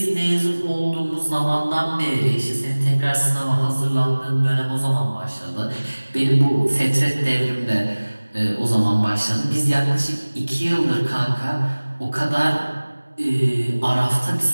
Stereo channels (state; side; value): inverted; both; correlation -1.00